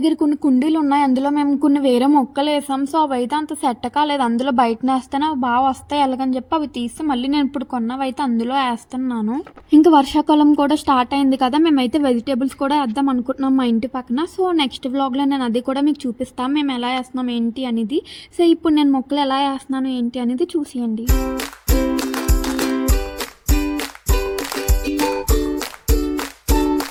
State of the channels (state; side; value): identical; both; correlation 1.00